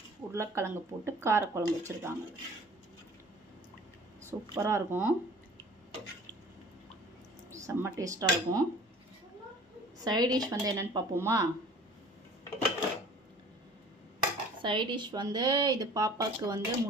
உருளைக்கிழங்கு போட்டு கார குழம்பு வச்சிருக்காங்க. சூப்பரா இருக்கும். செம்ம டேஸ்டா இருக்கும். சைடு டிஷ் வந்து என்னன்னு பார்ப்போமா? சைட் டிஷ் வந்து இது பாப்பாவுக்கு வந்து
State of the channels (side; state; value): both; normal; correlation 0.47